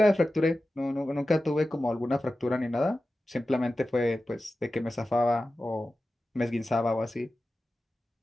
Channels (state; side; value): normal; both; correlation 0.94